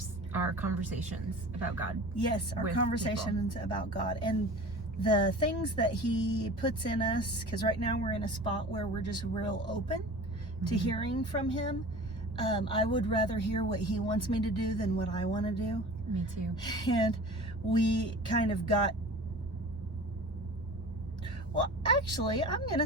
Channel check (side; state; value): both; normal; correlation 0.39